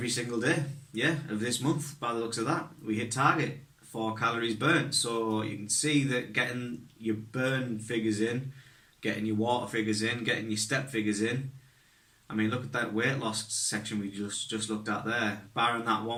single day, yeah, of this month, by the looks of that, we hit target for calories burnt. So you can see that getting your burn figures in, getting your water figures in, getting your step figures in. I mean, look at that weight loss section we just looked at there. Barring that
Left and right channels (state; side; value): identical; both; correlation 1.00